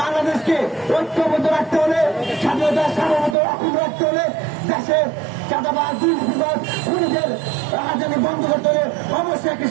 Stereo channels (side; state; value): left; drops out; at 3.4 s